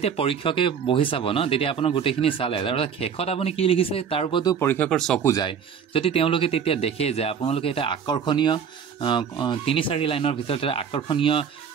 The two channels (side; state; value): left; quieter; 7.2 dB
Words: পৰীক্ষকে বহি চাব ন, তেতিয়া আপোনাৰ গোটেইখিনি চালে তাৰপিছত শেষত আপুনি কি লিখিছে তাৰ ওপৰতো পৰীক্ষকৰ চকু যায়। যদি তেওঁলোকে তেতিয়া দেখে যে আপোনালোকে এটা আকৰ্ষণীয় 3-4 লাইনৰ ভিতৰত এটা আকৰ্ষণীয়